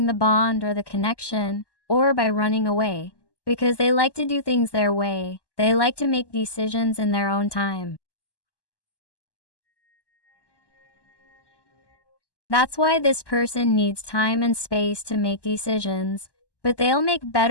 the bond or the connection, or by running away, because they like to do things their way, they like to make decisions in their own time. That's why this person needs time and space to make decisions, But they'll make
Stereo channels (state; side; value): late; right; 1.1 ms